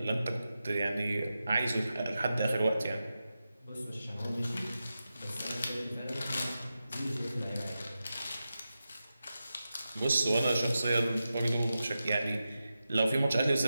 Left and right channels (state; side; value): inverted; both; correlation -0.92